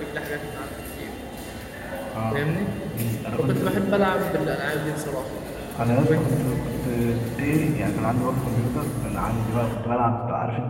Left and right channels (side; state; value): both; identical; correlation 1.00